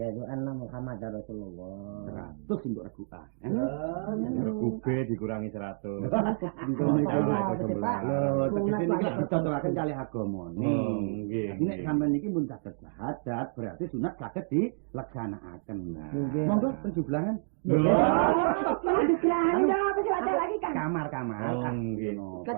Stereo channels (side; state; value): left; silent; digital silence